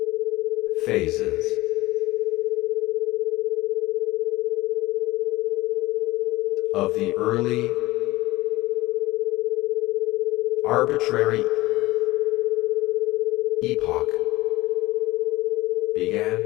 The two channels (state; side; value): quieter; right; 18.8 dB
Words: phases of the early arbitrary epoch began